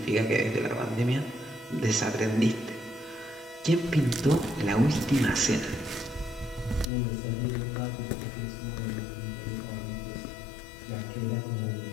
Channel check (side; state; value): right; drops out; at 6.9 s